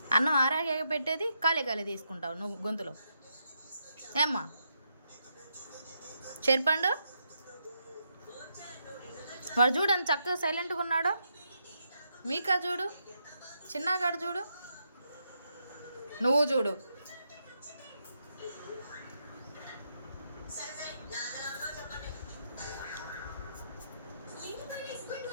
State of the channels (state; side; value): inverted; both; correlation -0.80